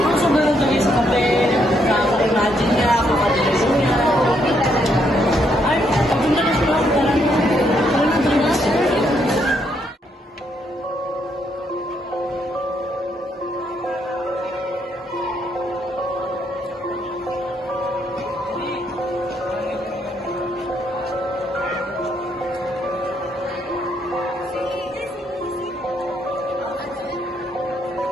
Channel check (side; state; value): both; normal; correlation 0.74